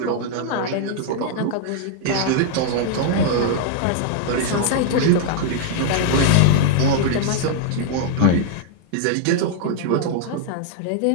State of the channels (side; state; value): both; different; correlation 0.00